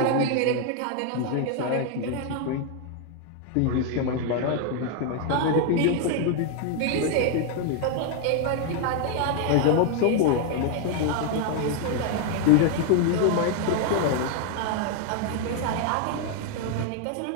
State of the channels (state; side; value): different; both; correlation 0.00